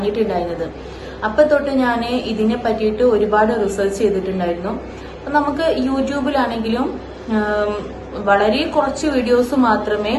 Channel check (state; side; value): identical; both; correlation 1.00